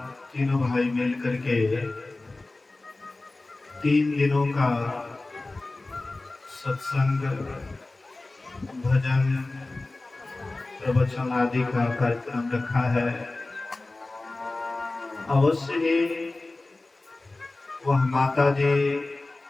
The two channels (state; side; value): quieter; right; 3.1 dB